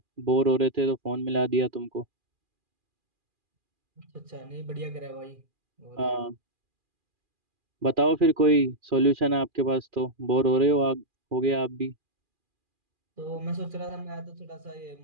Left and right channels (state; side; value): late; left; 2.4 ms